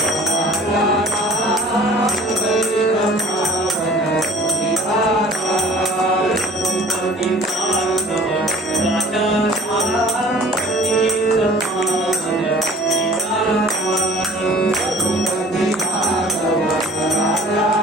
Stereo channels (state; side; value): normal; both; correlation 0.49